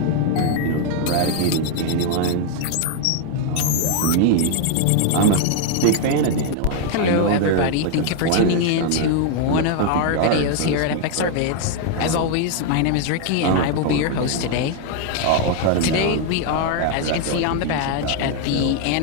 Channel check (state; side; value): different; both; correlation 0.00